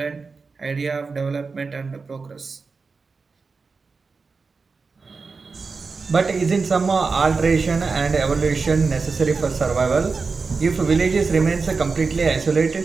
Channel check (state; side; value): quieter; left; 4.5 dB